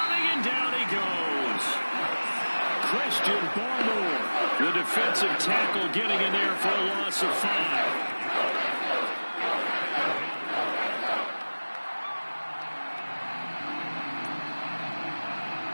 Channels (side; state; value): both; inverted; correlation -1.00